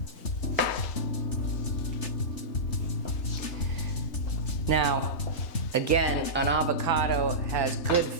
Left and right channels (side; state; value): right; late; 3.3 ms